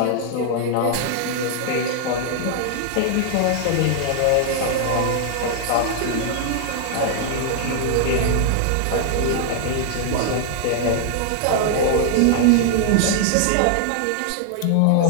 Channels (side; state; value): both; different; correlation -0.01